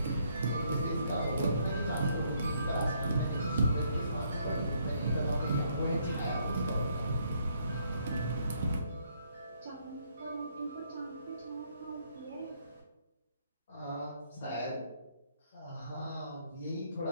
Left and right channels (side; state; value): both; inverted; correlation -0.70